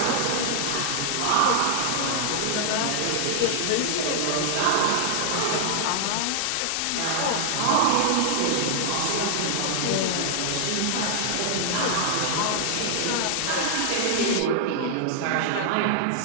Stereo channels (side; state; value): both; different; correlation -0.01